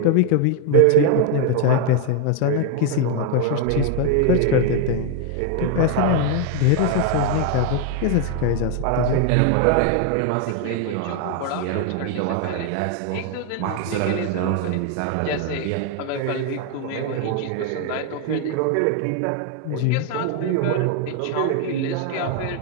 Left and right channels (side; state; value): both; different; correlation 0.00